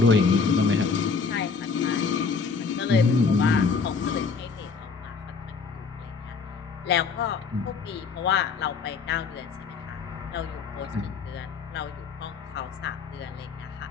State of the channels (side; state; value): right; quieter; 5.1 dB